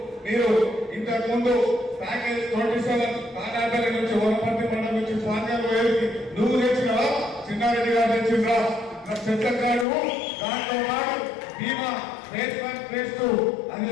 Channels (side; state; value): right; drops out; at 9.9 s